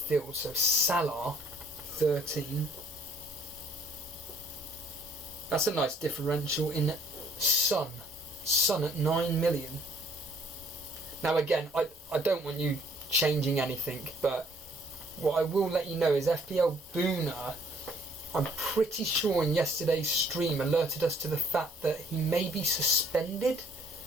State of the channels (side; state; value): both; normal; correlation 0.62